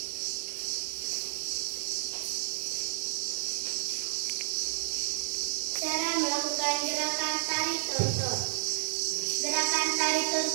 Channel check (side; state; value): left; silent; 57 dB below the other